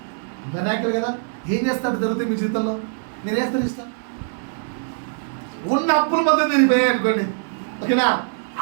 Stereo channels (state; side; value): silent; left; 64 dB below the other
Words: మెరాకిల్ కదా. ఏం చేస్తాడు జరుగుతుంది మీ జీవితంలో? మీరు వేస్తారు ఇష్టం. ఉన్న అప్పుల మధ్య తిరిగిపోయాయి అనుకోండి. ఓకేనా?